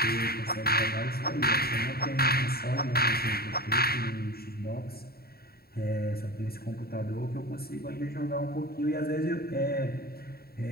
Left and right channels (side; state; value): right; late; 0.45 ms